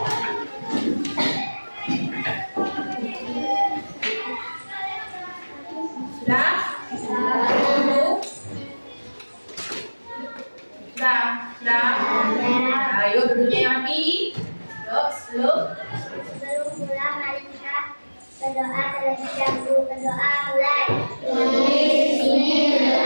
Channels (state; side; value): inverted; both; correlation -1.00